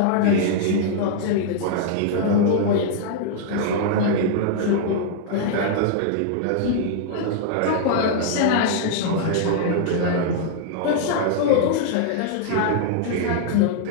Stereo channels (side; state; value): both; different; correlation -0.01